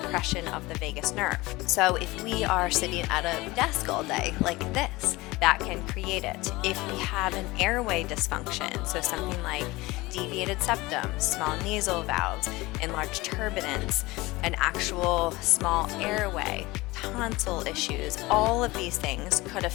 of the vagus nerve. So if we are sitting at a desk all day like this, that can create it. If we have an airway dysfunction, so something like deviated septum, small nasal valves, enlarged turbinates, an actual small airway, tonsil issues, all of these things could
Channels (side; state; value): right; quieter; 21.0 dB